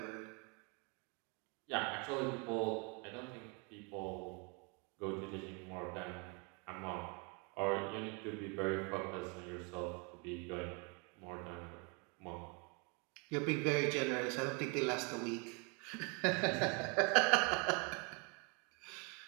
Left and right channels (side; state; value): left; quieter; 33.1 dB